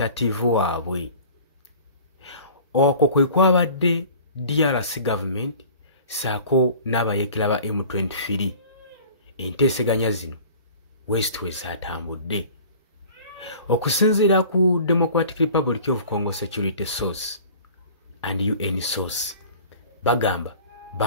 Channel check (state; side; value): inverted; both; correlation -0.44